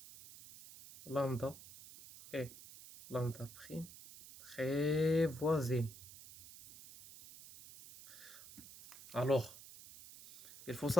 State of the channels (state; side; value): noise; right; hiss, 16 dB below the sound